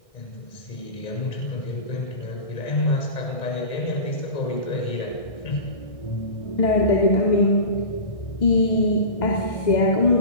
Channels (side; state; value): right; late; 1.6 ms